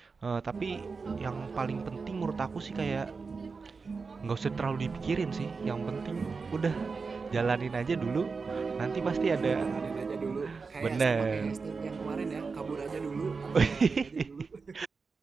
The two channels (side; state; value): left; quieter; 4.7 dB